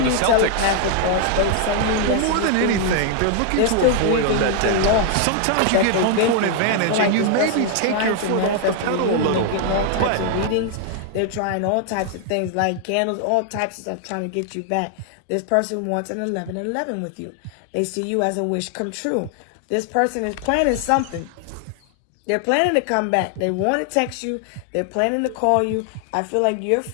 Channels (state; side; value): different; both; correlation 0.00